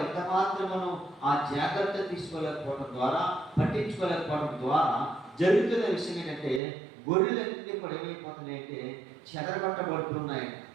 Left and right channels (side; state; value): left; drops out; at 6.6 s